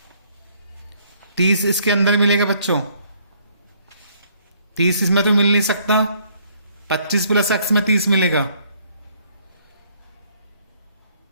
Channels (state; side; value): inverted; both; correlation -0.65